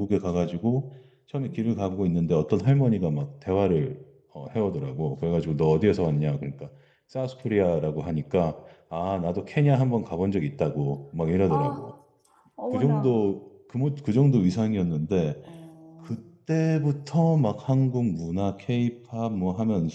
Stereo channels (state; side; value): identical; both; correlation 1.00